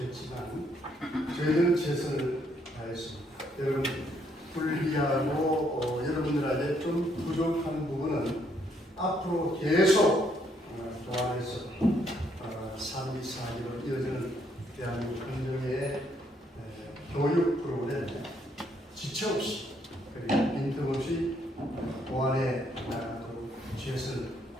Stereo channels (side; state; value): both; normal; correlation 0.71